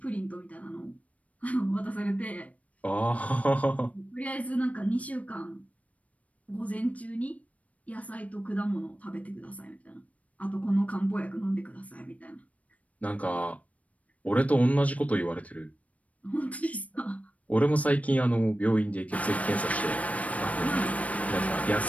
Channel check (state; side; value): late; right; 0.067 ms